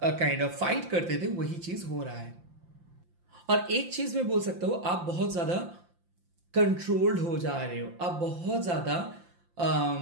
काइंड ऑफ फाइट करते थे, वही चीज हो रहा है। और एक चीज मैं बोल सकता हूं, आप बहुत ज्यादा कंट्रोल्ड हो जा रहे हो, आप बहुत ज्यादा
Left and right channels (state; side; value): late; left; 5.8 ms